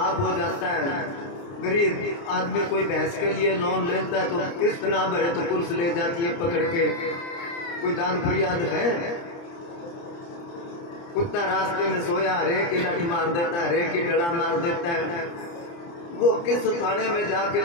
हो जाता है। गरीब आदमी कोई भैंस के लिए लोन लेता है तो किस्त ना भरे तो पुलिस ले जाती है पकड़ के। कोई दान फरियाद है? कुत्ता रास्ते में सोया हरे की लठ मार देता है, हरे की डला मार देता है। वो किस थाने में जाके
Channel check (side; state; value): right; late; 29 ms